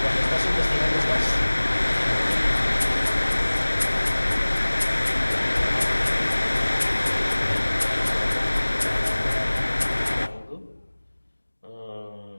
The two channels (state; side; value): inverted; both; correlation -1.00